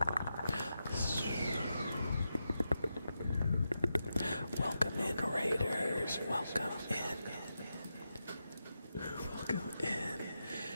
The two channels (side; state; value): both; inverted; correlation -0.88